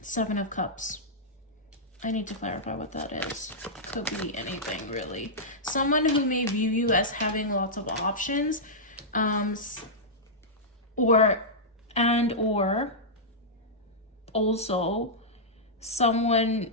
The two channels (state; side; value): normal; both; correlation -0.11